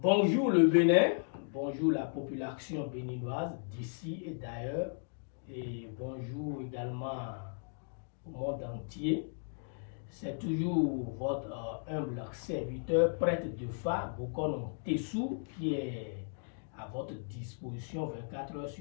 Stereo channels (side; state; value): right; silent; digital silence